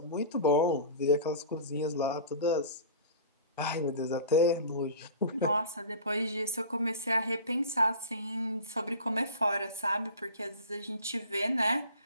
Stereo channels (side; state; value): both; inverted; correlation -0.38